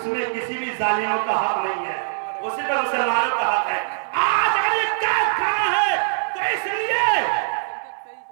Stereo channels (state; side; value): silent; left; 64 dB below the other